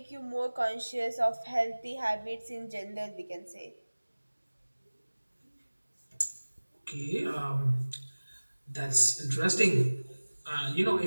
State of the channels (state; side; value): inverted; both; correlation -1.00